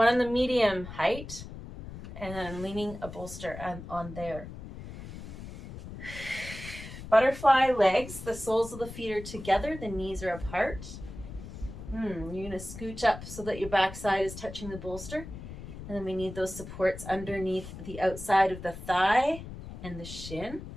on the medium height, and then I'm leaning a bolster on there. Butterfly legs, the soles of the feet are together, the knees are apart. You're going to scooch up so that your backside is touching the bolster. And then we need those supports underneath the outside of the thigh and the shin.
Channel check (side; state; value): left; noise; rumble, 12 dB below the sound